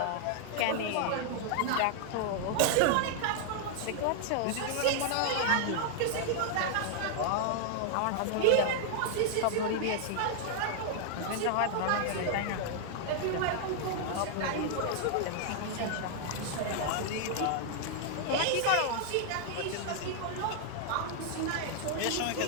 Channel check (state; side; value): different; both; correlation 0.00